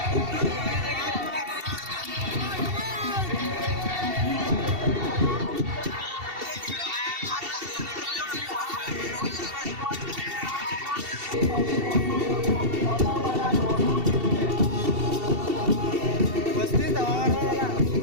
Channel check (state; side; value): late; left; 2.7 ms